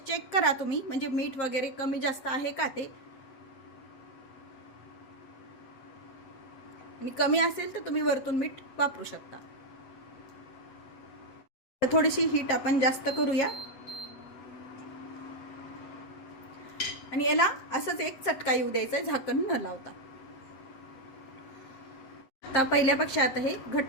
चेक करा तुम्ही, म्हणजे मीठ वगैरे कमी जास्त आहे का ते. आणि कमी असेल तर तुम्ही वरतून मीठ वापरू शकता. थोडीशी हीट आपण जास्त करूया आणि याला असंच एक चटका येऊ द्यायचा झाकण न लावता. आता पहिल्यापेक्षा आता हे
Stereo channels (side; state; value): right; late; 7.5 ms